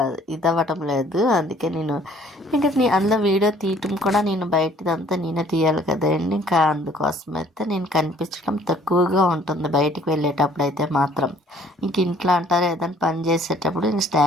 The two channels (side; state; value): both; normal; correlation 0.58